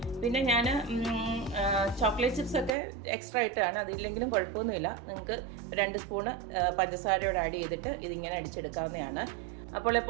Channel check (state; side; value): drops out; left; at 2.7 s